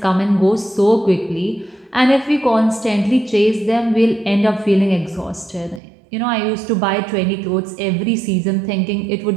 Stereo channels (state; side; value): drops out; left; at 5.8 s